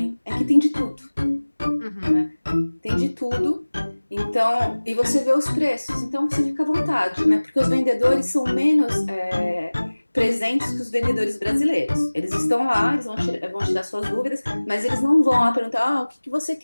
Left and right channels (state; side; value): inverted; both; correlation -1.00